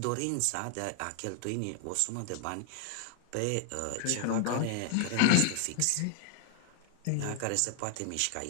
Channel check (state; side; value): different; both; correlation 0.00